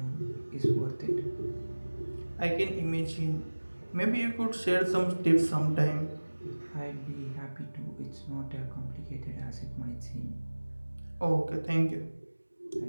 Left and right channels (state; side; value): inverted; both; correlation -1.00